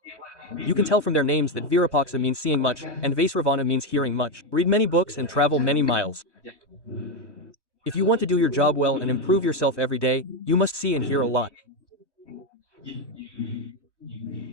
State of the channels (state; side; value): late; right; 1.1 ms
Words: You can tell from their names that Virapaksa means seeing much, and Vaisravana means hearing much. Read many books and travel many miles. If you want to do your job well and improve yourself every day, you must see and hear a lot.